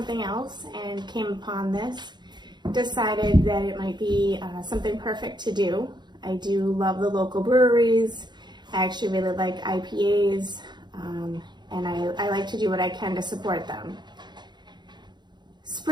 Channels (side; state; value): left; late; 0.21 ms